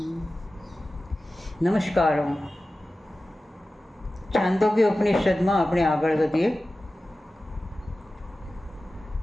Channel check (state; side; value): normal; both; correlation 0.95